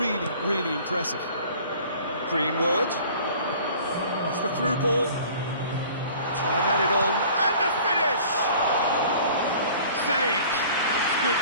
really impressive. Greenwood. It's the through ball. Try and add it on. And the finish! Saved. That's good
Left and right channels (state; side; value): inverted; both; correlation -0.48